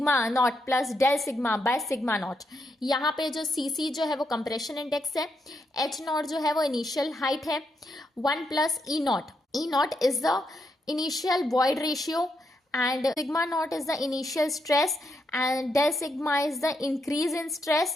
naught plus del sigma by sigma naught. यहाँ पे जो CC जो है वो compression index है, H naught जो है वो initial height है, 1 plus E naught. E naught is the initial void ratio and sigma naught is the initial stress and del sigma is the increase in stress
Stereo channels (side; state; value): both; normal; correlation 0.81